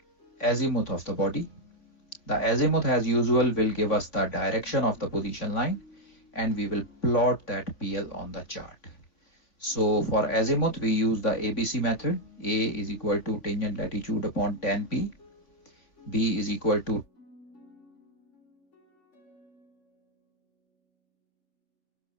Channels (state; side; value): late; right; 3.5 ms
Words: azimuth of the body. The azimuth, as usual, will give us the direction of the position line, and we will plot that PL on the chart. So for azimuth, we use the ABC method. A is equal to tangent latitude upon tan P. B is equal to